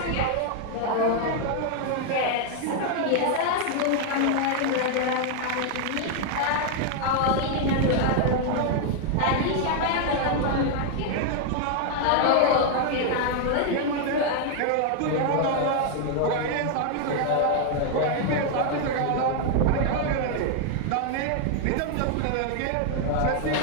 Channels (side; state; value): both; different; correlation 0.00